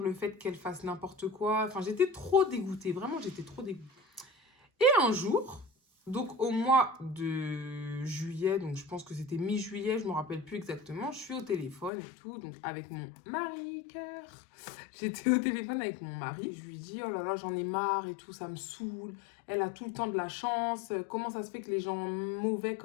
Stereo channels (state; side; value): drops out; right; at 11.9 s